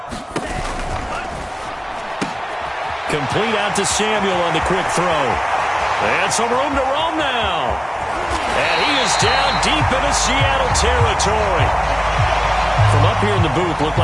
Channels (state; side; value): identical; both; correlation 1.00